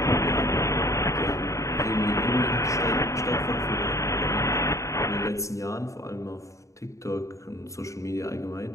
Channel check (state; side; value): late; right; 0.15 ms